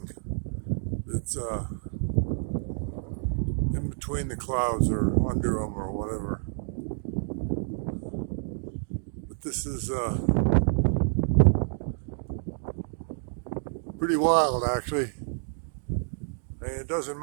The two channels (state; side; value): silent; left; digital silence